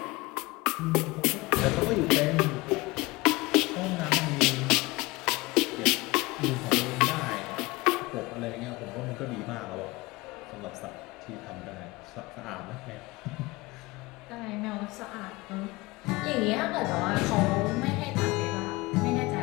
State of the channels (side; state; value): right; quieter; 22.4 dB